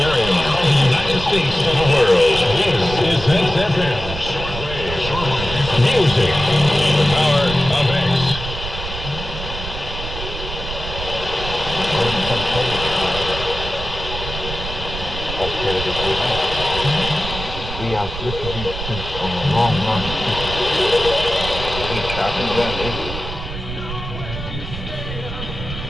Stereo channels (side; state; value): right; noise; rumble, 8 dB below the sound